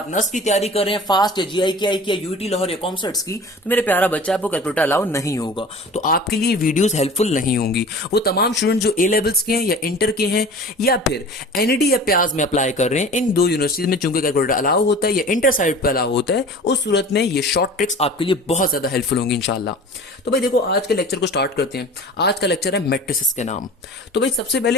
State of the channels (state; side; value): normal; both; correlation 0.40